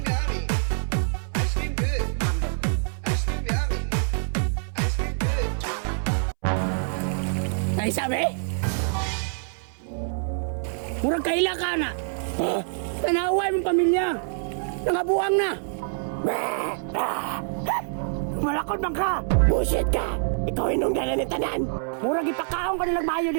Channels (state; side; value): silent; left; 61 dB below the other